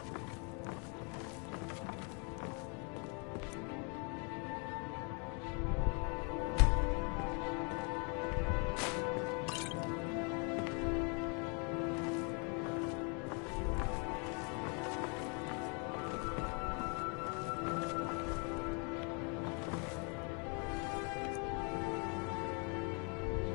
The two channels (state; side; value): quieter; right; 35.6 dB